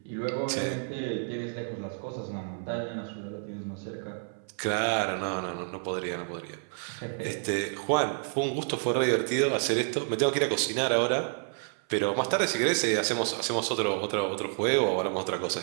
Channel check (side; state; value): left; silent; 55 dB below the other